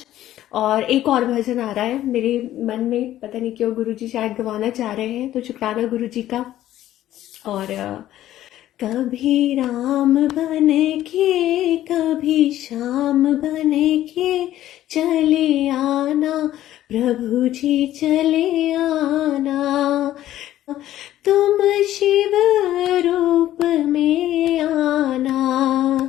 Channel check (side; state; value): right; quieter; 13.3 dB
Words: और एक और भजन आ रहा है मेरे मन में, पता नहीं क्यों गुरु जी शायद गवाना चाह रहे हैं, तो शुक्राना गुरु जी का। और कभी राम बने के कभी श्याम बने के चले आना, प्रभु जी चले आना। तुम शिव रूप में आना,